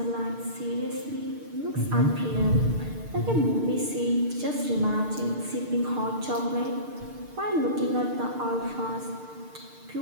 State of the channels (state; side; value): late; left; 6.6 ms